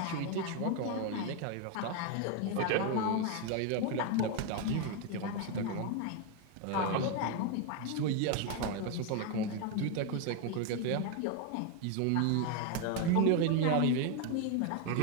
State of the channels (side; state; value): both; different; correlation 0.01